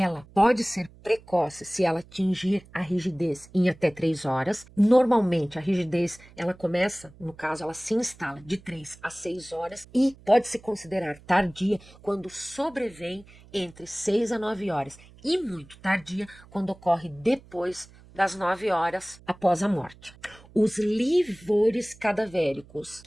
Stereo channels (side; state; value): right; noise; hum, 23 dB below the sound